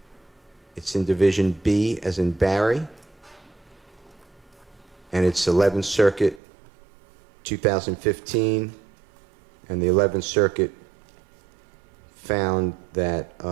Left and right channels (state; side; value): drops out; left; at 6.4 s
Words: It's in Division B, as in Barry. And it's 11th Circuit, 2015. And the 11th Circuit found that